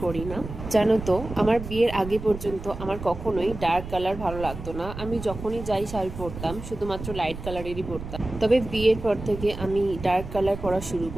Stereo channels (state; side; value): noise; right; rumble, 10 dB below the sound